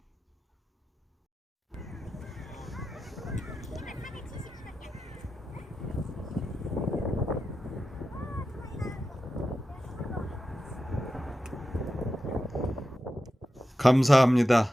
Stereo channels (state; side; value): normal; both; correlation 0.91